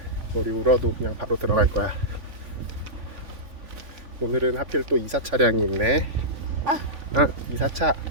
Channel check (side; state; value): left; late; 3.5 ms